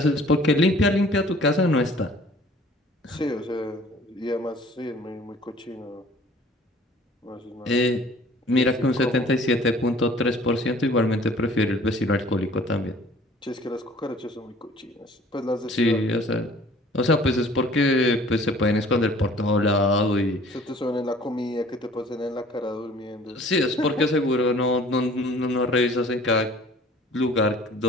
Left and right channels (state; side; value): normal; both; correlation 0.51